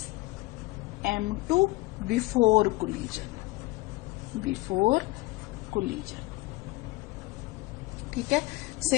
M2 before collision, ठीक है।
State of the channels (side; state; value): right; quieter; 21.0 dB